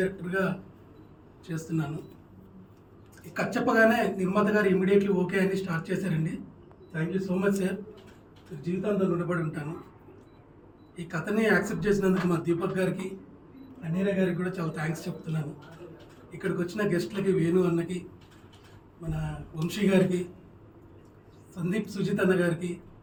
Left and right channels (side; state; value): both; identical; correlation 1.00